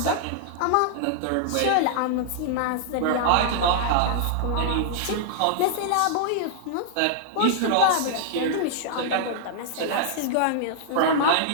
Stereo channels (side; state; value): both; different; correlation -0.01